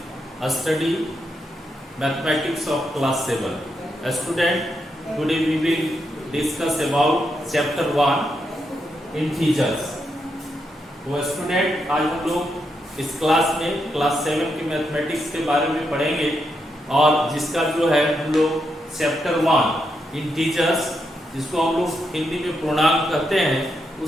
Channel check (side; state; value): both; normal; correlation 0.82